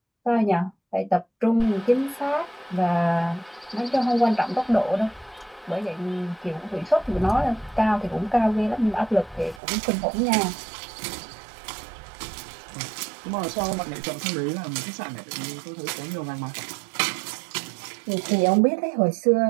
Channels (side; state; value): left; drops out; at 9.6 s